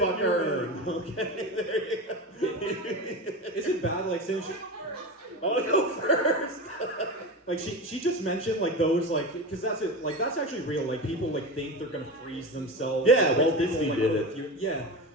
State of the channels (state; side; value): normal; both; correlation 0.25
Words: the her. new Okay, there you go. Is it bad, like, since she, I want to go first. like she just mentioned like those like because that's it like that's actually real like people like think they're gonna freeze themselves. Yeah, like, Walt people, Disney like, did oh, it. if you- yeah.